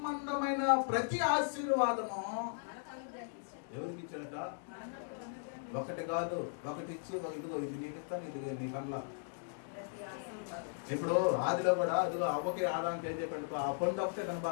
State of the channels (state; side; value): silent; right; digital silence